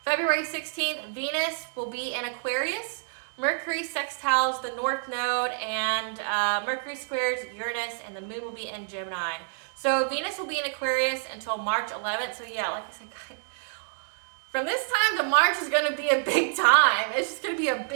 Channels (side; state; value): left; silent; 59 dB below the other